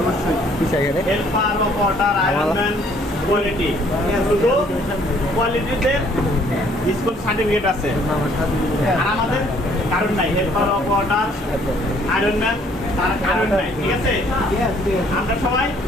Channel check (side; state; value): both; normal; correlation 0.61